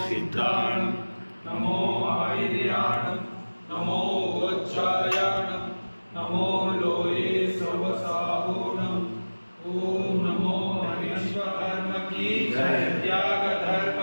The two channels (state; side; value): inverted; both; correlation -1.00